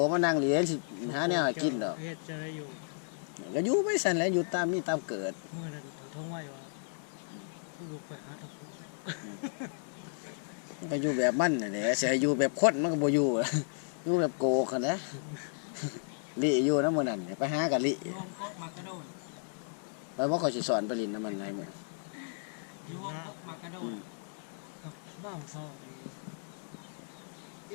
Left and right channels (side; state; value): right; silent; digital silence